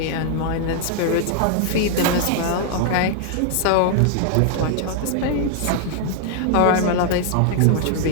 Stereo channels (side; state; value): both; different; correlation -0.01